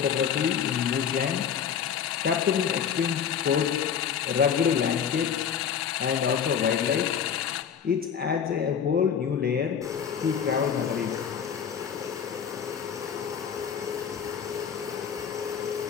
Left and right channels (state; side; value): quieter; right; 7.7 dB